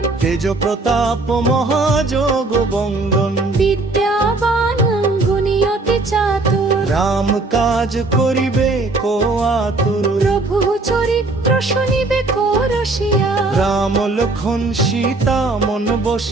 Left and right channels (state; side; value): quieter; left; 3.3 dB